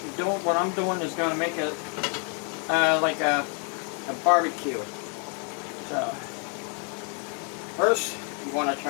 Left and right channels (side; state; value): right; quieter; 39.3 dB